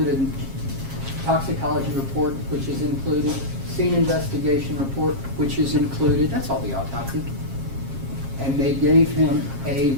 in toxicology report, which is included, scene investigation report, which is included. That's all the autopsy. And they gave him a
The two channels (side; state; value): left; late; 7.4 ms